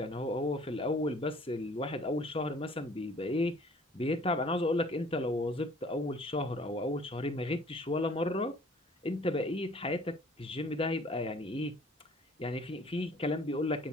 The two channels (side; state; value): both; normal; correlation 0.54